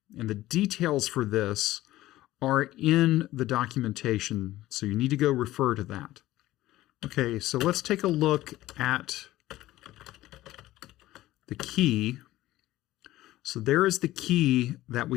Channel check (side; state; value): right; quieter; 15.9 dB